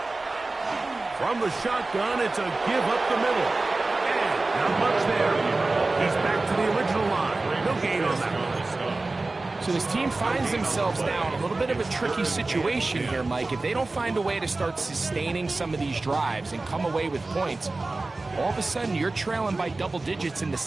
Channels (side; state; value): left; quieter; 3.3 dB